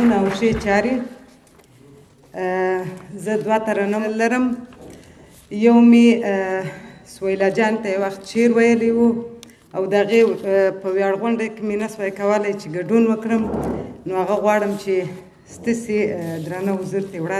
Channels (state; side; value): identical; both; correlation 1.00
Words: او ښې چارې. زه دوه ترنم لرم. یو مې سویلا جان ته یو وخت شعر ویلی و او د هغې په ویاړ غونډه کې مې نه سوی کولی چې ګډون وکړم، نو هغه غواړم چې ستاسې درانه حضور ته